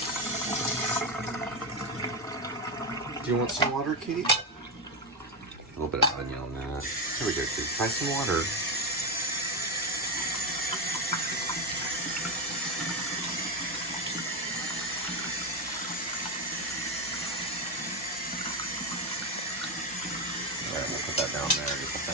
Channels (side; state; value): both; normal; correlation 0.10